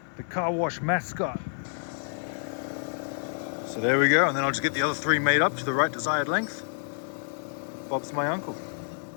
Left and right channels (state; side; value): silent; right; 59 dB below the other